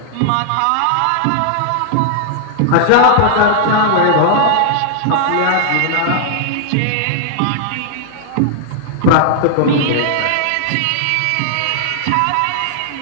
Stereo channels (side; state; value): both; different; correlation -0.01